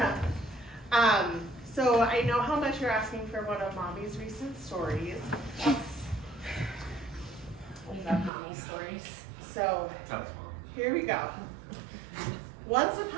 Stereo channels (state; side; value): drops out; left; at 8.3 s